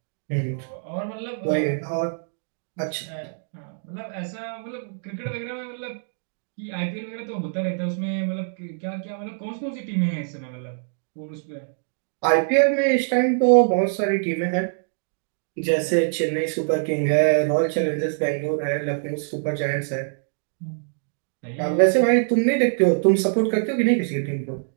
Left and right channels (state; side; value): silent; left; digital silence